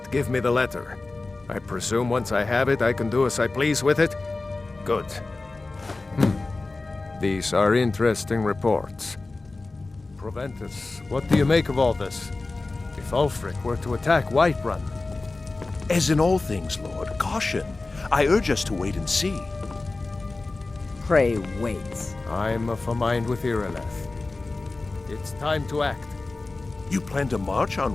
give me the letter. I presume once I have it, I can do as I please with it? Good. These are interesting reports. Proventus, what do you make of all this? If Ulfric were to attack Whiterun? As in all things, Lord, caution. I urge us to wait and see. Pray wait. I'm of a mind with Irileth. It's time to act. You plan to march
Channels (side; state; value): right; quieter; 3.4 dB